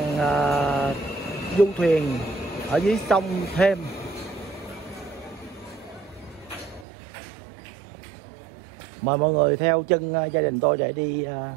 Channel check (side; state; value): left; drops out; at 6.9 s